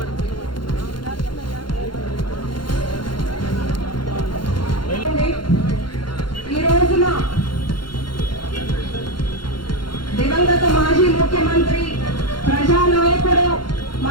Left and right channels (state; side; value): late; right; 0.72 ms